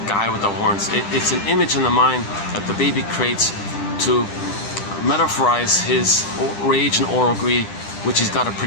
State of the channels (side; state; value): right; late; 10 ms